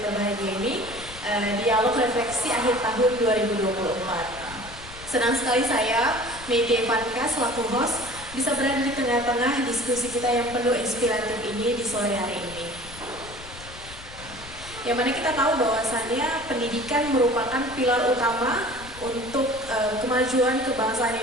berbahagia ini, dialog refleksi akhir tahun 2024. Senang sekali saya, Megi Evanka selaku host, bisa berada di tengah-tengah diskusi kita yang penuh inspiratif ini di sore hari ini. Yang mana kita tahu bahwasannya pendidikan merupakan pilar utama untuk kemajuan kebangsaan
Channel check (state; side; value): noise; left; rumble, 16 dB below the sound